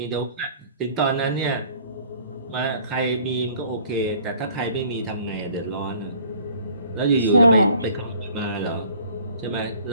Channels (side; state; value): both; inverted; correlation -0.53